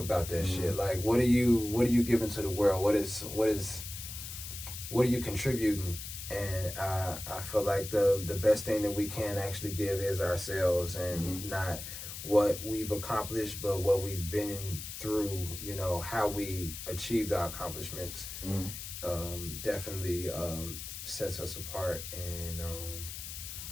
about that shit? Like, what are you giving to the world? What are you contributing? And I feel like the best thing that we can actually give is ourselves and not what we've accomplished, but what we've been through, you know, how we achieved our accomplishments, definitely sets us apart, and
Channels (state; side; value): noise; left; hiss, 9 dB below the sound